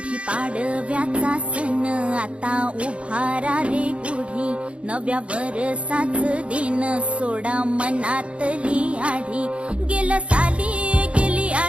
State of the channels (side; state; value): left; late; 0.060 ms